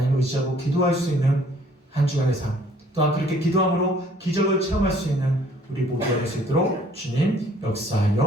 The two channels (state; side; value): normal; both; correlation 0.59